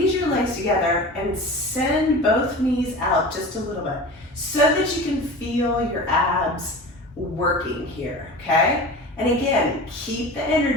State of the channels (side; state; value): both; normal; correlation 0.34